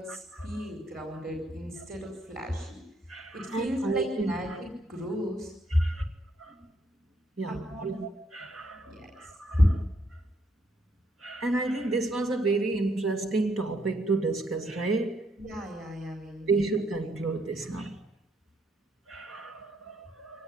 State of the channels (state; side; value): normal; both; correlation 0.73